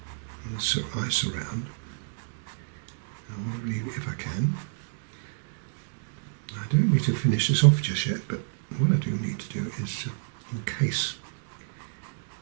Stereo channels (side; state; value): left; silent; digital silence